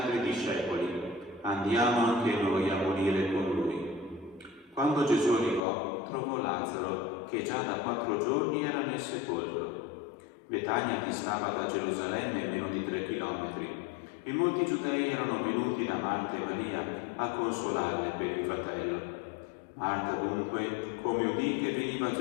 discepoli: andiamo anche noi a morire con lui. Quando Gesù arrivò, trovò Lazzaro, che già da 4 giorni era nel sepolcro. Betania distava da Gerusalemme meno di 3 chilometri, e molti giudei erano venuti da Marta e Maria a consolarle per il fratello. Marta dunque, come udì che veniva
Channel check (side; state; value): right; drops out; at 5.7 s